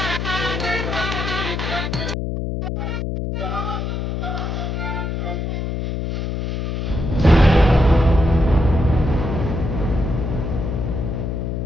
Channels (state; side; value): noise; left; hum, 2 dB below the sound